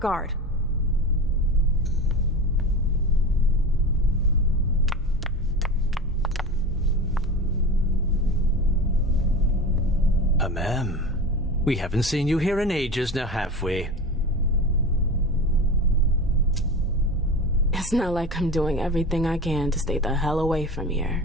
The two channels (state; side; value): normal; both; correlation 0.29